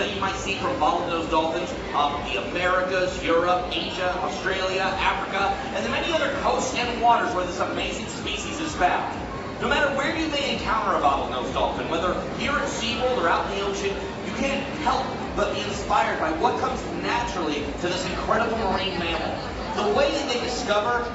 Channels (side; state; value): both; identical; correlation 1.00